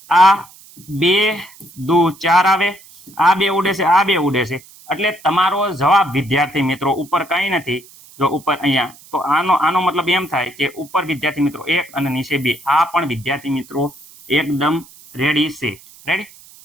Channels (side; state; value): right; noise; hiss, 23 dB below the sound